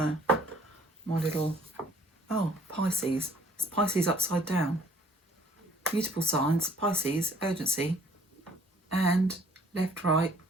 my little, oh, Pisces. It's Pisces upside down. Mutable signs, Pisces, urgency, and left, right,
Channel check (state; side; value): normal; both; correlation 0.58